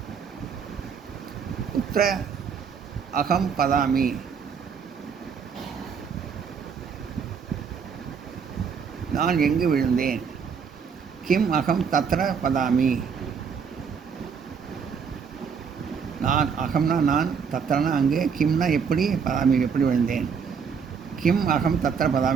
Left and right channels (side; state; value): left; quieter; 6.4 dB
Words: உத்திர அகம் பதாமி, நான் எங்கு விழுந்தேன். கிம் அகம் தத்ர பதாமி, நான் அகம்னா நான், தத்ரனா அங்கு, கிம்னா எப்படி, பதாமி எப்படி விழுந்தேன். கிம் அகம் தத்ர